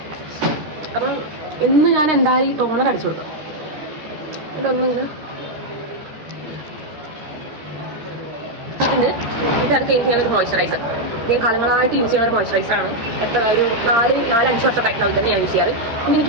അപ്പം ഇന്ന് ഞാൻ എന്തായാലും ഈ ടോണർ അടിച്ചു കൊടുക്കാം. ഇതൊന്നിങ്ങനെ ഇത് അത് കഴിഞ്ഞ് ഞാനൊരു മോയ്സ്ചറൈസർ, ഞാൻ കാലങ്ങളായിട്ട് യൂസ് ചെയ്യുന്ന ഒരു മോയ്സ്ചറൈസറാണ്. എത്ര ഒരു 4-5 വർഷമായിട്ടാണ് ഇതന്നെ ഞാൻ യൂസ് ചെയ്യാറ്. പിന്നെ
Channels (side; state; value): left; late; 13 ms